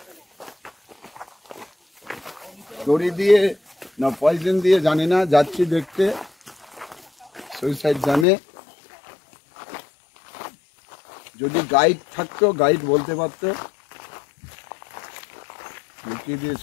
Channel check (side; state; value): right; drops out; at 8.2 s